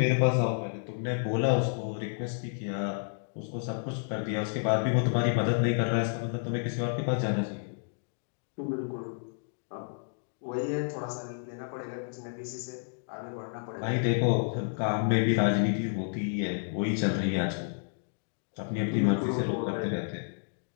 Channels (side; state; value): right; silent; digital silence